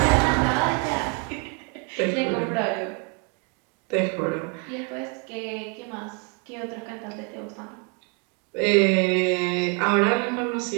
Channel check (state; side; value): quieter; left; 34.4 dB